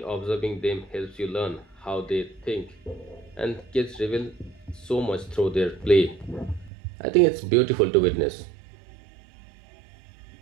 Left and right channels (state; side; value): drops out; left; at 6.7 s